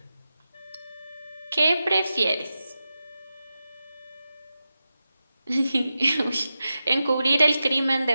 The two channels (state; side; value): inverted; both; correlation -0.92